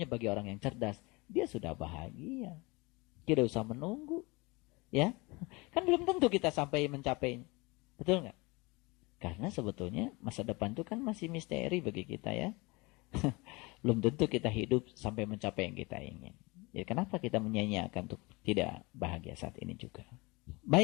bagi orang yang cerdas, dia sudah bahagia. Tidak usah menunggu. Ya, kan belum tentu kita sampai mencapainya. Betul nggak? Karena sebetulnya masa depan itu kan masih misteri bagi kita ya. Belum tentu kita hidup sampai mencapai yang kita ingin. Jadi kenapa kita menyanyiakan untuk tidak bahagia saat ini juga?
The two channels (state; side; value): quieter; right; 25.4 dB